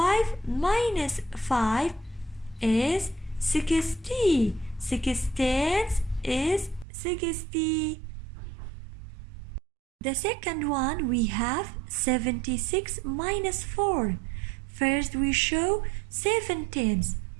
minus 5 is 60. 6 tens is 60. The second one, we have 76 minus 4. First we show 7 tens.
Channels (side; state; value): left; drops out; at 6.9 s